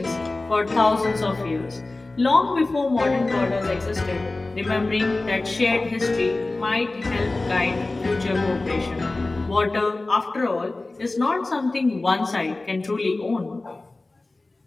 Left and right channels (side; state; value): right; quieter; 3.1 dB